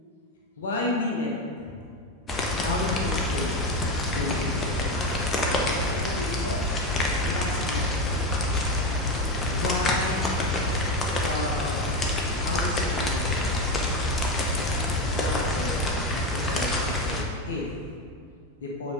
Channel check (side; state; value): both; normal; correlation 0.15